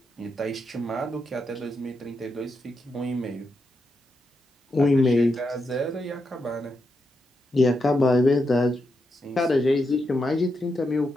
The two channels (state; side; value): normal; both; correlation 0.84